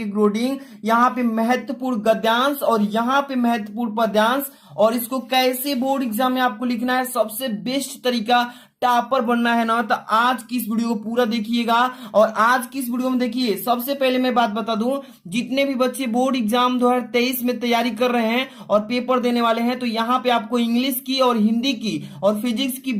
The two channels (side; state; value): both; identical; correlation 1.00